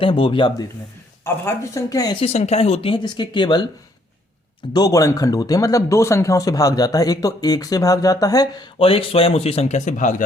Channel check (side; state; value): both; normal; correlation 0.67